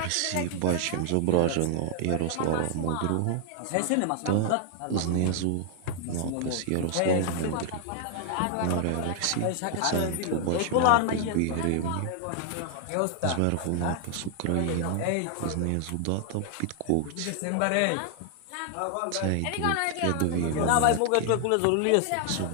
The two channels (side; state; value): both; different; correlation 0.00